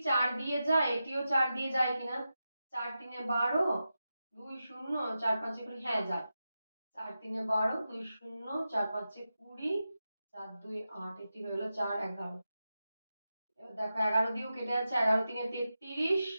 4 দিয়ে যায়, এটিও 4 দিয়ে যায় কিনা। 4 3 12, 2 0, 4 5 20, হ্যাঁ যায়। 4 3 12, 2 0, 4 5 20, 4 2 8, এটি হয়ে গেল 4 11। এবার দেখো 11 দিয়েও কেটে যাচ্ছে, 11 3 33।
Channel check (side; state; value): both; inverted; correlation -0.91